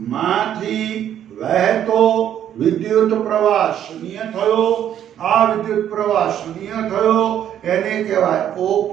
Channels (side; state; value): left; quieter; 10.3 dB